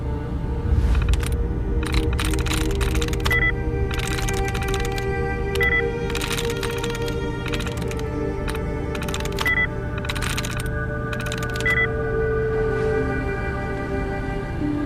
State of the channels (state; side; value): identical; both; correlation 1.00